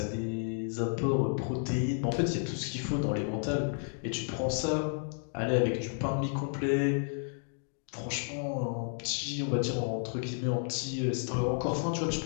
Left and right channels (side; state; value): right; silent; 55 dB below the other